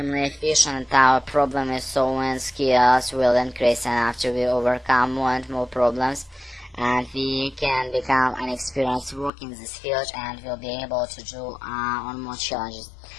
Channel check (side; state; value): right; drops out; at 9.3 s